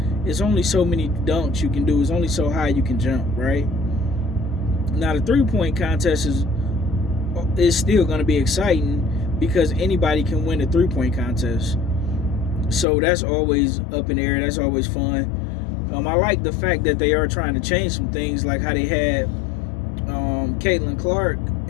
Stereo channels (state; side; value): drops out; right; at 12.9 s